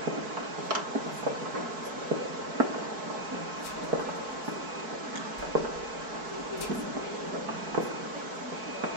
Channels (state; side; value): late; left; 4.6 ms